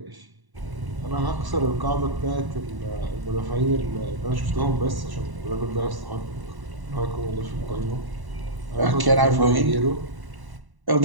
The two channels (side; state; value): left; late; 1.0 ms